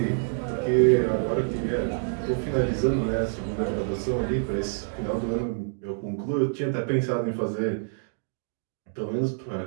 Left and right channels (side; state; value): left; silent; digital silence